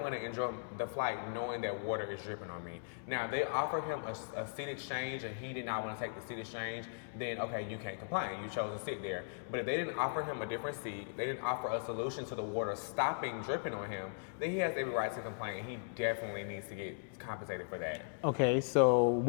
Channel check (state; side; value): silent; right; digital silence